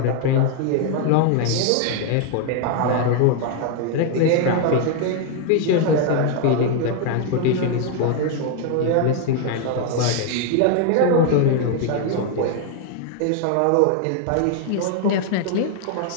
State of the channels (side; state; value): both; different; correlation 0.00